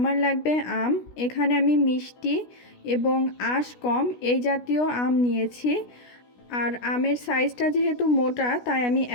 লাগবে আম। এখানে আমি মিষ্টি এবং আঁশ কম এই জাতীয় আম নিয়েছি। আর আমের সাইজটা যেহেতু মোটা তাই আমি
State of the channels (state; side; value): late; right; 16 ms